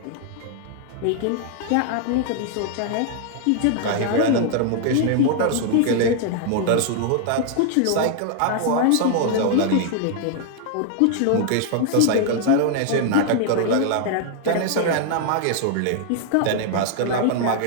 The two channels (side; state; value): both; different; correlation 0.00